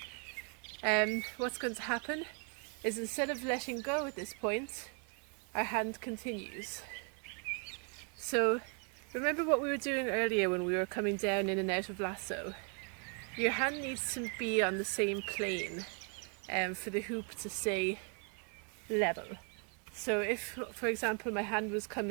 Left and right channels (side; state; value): left; quieter; 39.6 dB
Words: what's going to happen is instead of letting go at this point, our hand continues. So remember what we were doing earlier when we were coming down in and out of lasso? Your hand needs to be on the same plane for the hoop to stay level. So if, for example, my hand was